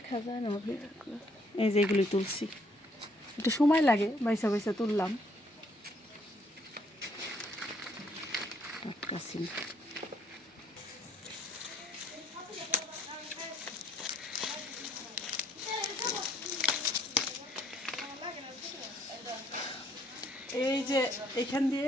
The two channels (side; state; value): both; normal; correlation 0.67